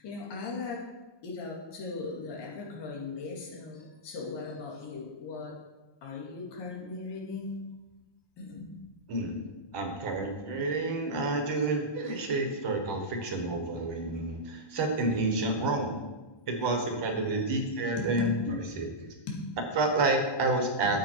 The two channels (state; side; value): late; right; 1.2 ms